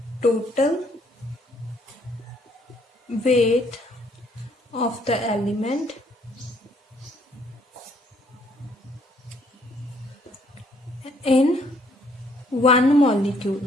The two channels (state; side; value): normal; both; correlation 0.65